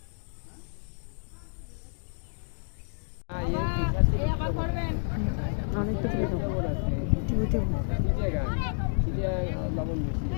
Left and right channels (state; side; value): silent; right; digital silence